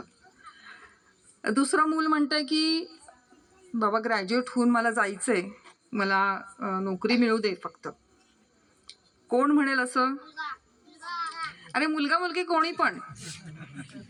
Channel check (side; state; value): both; identical; correlation 1.00